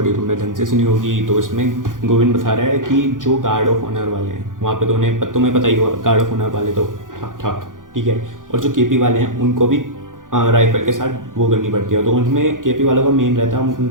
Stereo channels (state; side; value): late; left; 0.89 ms